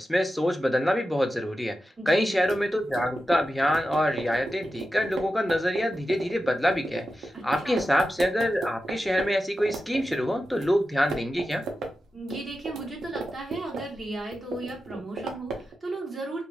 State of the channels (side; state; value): both; normal; correlation 0.91